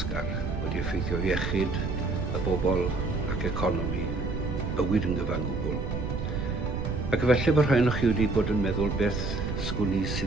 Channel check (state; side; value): noise; right; rumble, 3 dB below the sound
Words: wedi effeithio iechyd y bobl ac economi, bywyd yn gyfan gwbl. Ac efallai bod rhai o'ch chi wedi bod yn meddwl beth sgwni